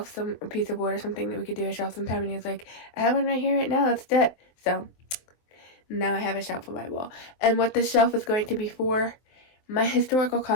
some piece of wood or something that we could do a shelf sometime? And he was like, I have one right here right now, let's do it. So, now I have a shelf on my wall. And what this shelf is going to be for, my historical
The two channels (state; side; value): late; right; 23 ms